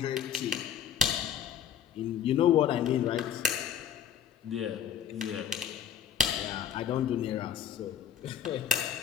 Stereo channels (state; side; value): quieter; right; 8.6 dB